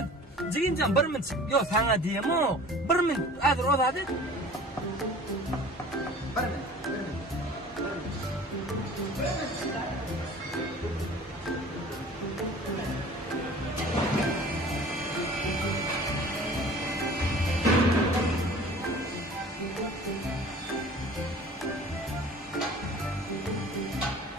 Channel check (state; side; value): normal; both; correlation 0.45